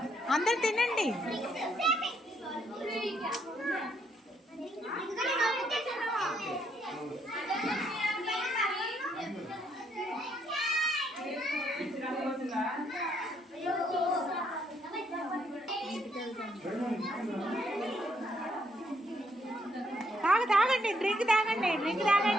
అందరు తినండి. తాగండి, డ్రింక్ తాగండి, డ్రింక్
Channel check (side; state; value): both; normal; correlation 0.72